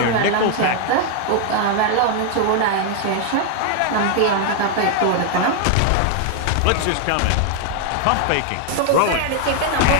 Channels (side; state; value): both; different; correlation 0.00